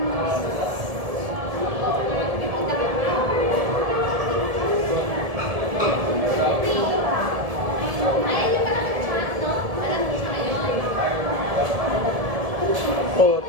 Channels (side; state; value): left; late; 1.7 ms